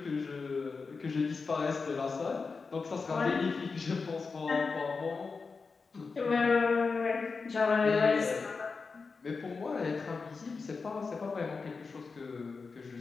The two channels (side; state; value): right; quieter; 4.6 dB